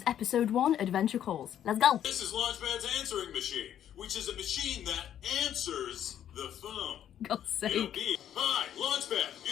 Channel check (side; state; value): right; quieter; 10.3 dB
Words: episode 1, Adventure Calls. Let's go! This is Launchpad's answering machine, which is a machine that answers the phone. God's sake. It'll be, hi,